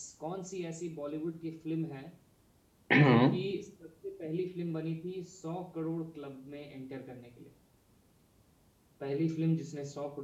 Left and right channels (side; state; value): both; identical; correlation 1.00